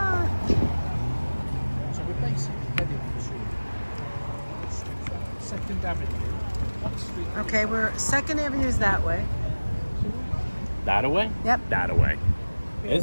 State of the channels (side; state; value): both; inverted; correlation -1.00